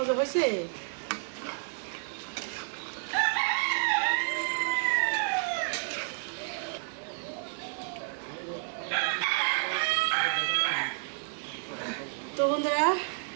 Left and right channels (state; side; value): silent; left; 57 dB below the other